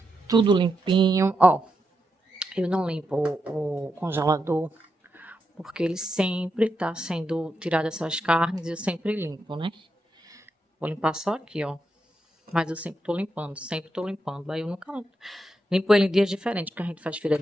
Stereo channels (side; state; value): both; normal; correlation 0.85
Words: Tudo limpinho. Ó, eu não limpo o congelador, porque ele sempre tá sendo tirado essas carnes e eu sempre limpo, né? Vou limpar só aqui, ó. Mas eu sempre tô limpando, sempre tô limpando. Aí eu nunca limpo ele em dias diferentes, porque a gente faz feira